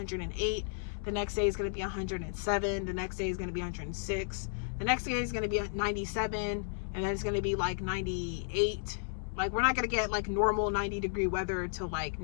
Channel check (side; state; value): right; silent; digital silence